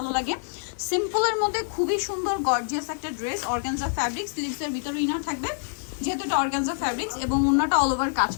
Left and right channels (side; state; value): right; silent; digital silence